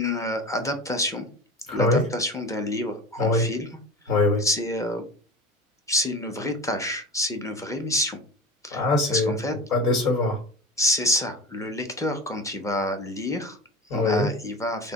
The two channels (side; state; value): both; normal; correlation 0.32